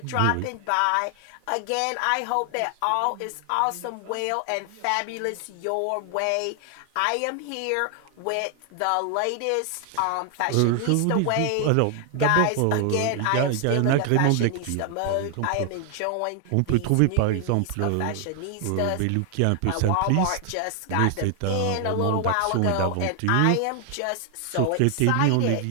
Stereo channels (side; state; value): both; different; correlation 0.00